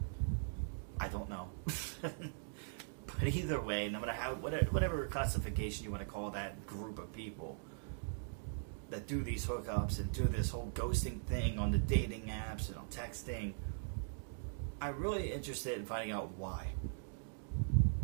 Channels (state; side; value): silent; left; digital silence